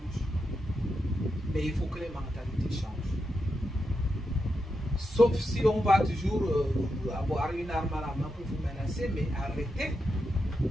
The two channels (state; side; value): normal; both; correlation 0.86